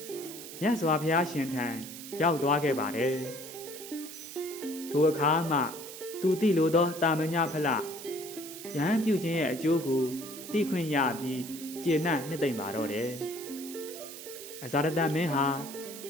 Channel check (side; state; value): right; noise; hiss, 12 dB below the sound